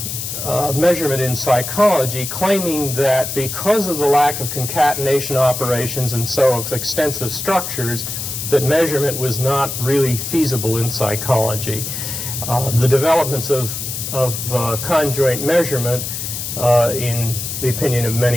measurement in psychology, claiming that because of the lack of concatenation operations and so of extensive structures, that measurement was not really feasible in psychology. The developments of conjoint measurement, in the opinion of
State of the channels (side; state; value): left; noise; hiss, 5 dB below the sound